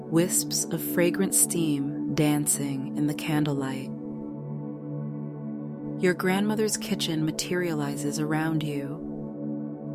Wisps of fragrant steam dancing in the candlelight. Your grandmother's kitchen materializes around you.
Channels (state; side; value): identical; both; correlation 1.00